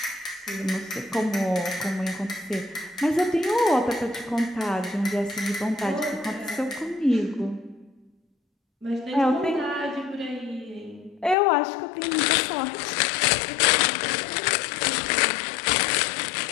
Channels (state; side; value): drops out; right; at 11.4 s